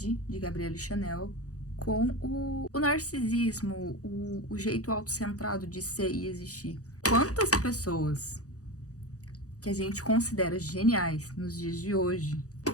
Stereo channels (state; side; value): late; right; 0.66 ms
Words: de Gabrielle Chanel com o narcisismo, o jeito autocentrado de ser e existir. Quantas pessoas que a gente considera geniais nos dias de hoje,